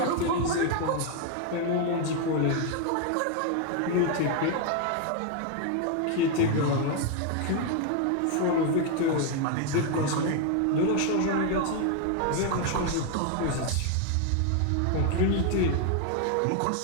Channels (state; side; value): different; both; correlation 0.01